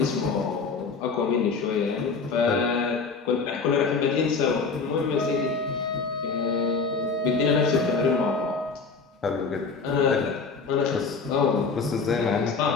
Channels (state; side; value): quieter; right; 4.7 dB